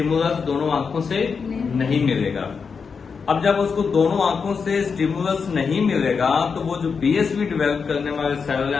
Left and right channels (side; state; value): right; quieter; 5.6 dB